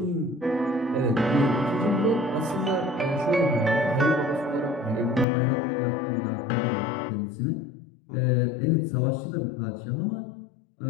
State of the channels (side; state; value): right; drops out; at 5.2 s